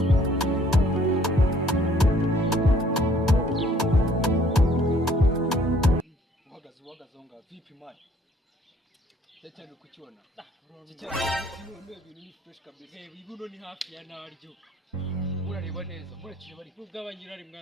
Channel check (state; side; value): normal; both; correlation 0.60